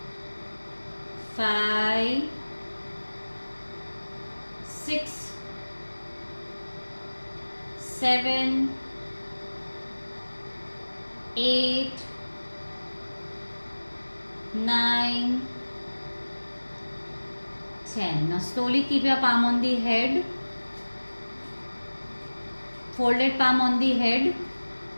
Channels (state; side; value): inverted; both; correlation -1.00